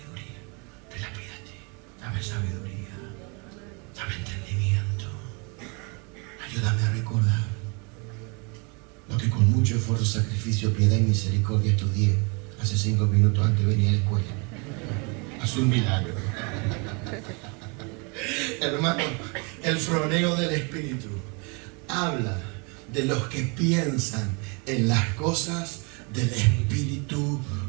te la pide a ti. Dame sabiduría, dame entendimiento. Ayúdame a recordar lo que con mucho esfuerzo, sacrificio, piedad y misericordia estudié hace 5 minutos antes de venir a la escuela. Haz un milagro. Hermano, el froneo del Espíritu habla de los que piensan en las cosas del Espíritu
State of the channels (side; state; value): left; quieter; 32.4 dB